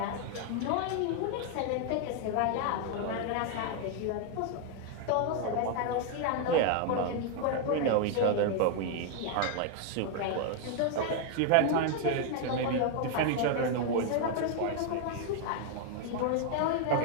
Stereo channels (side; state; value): both; different; correlation 0.00